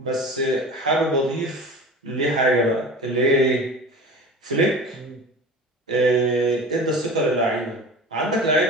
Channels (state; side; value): normal; both; correlation 0.36